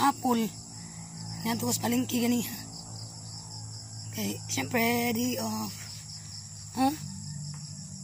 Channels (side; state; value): both; identical; correlation 1.00